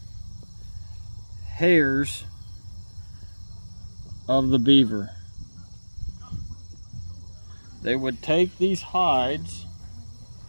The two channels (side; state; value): both; inverted; correlation -1.00